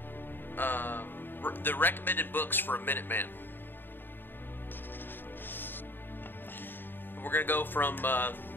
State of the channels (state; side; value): late; right; 0.095 ms